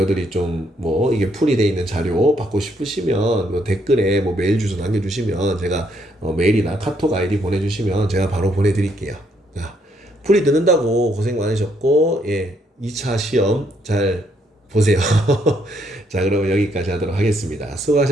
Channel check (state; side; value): normal; both; correlation 0.72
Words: 좀 뭐 이게 풀이 돼 있는 자료 받고 싶으시면 뭐 댓글에 뭐 메일 주소 남겨주시면 제가 메일이나 카톡 아이디 보내주시면 제가 바로 보내드릴게요. 자, 풀이 듣는다고 고생 많으셨고, 예, 2차 시험 잘 보세요. 자, 그러면 여기까지 하도록 하겠습니다.